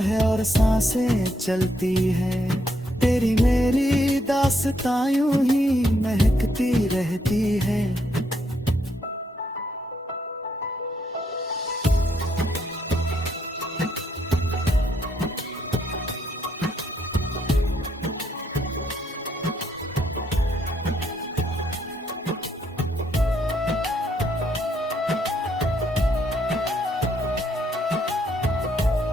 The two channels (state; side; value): normal; both; correlation 0.74